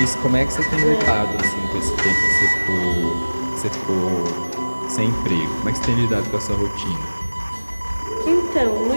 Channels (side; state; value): both; inverted; correlation -1.00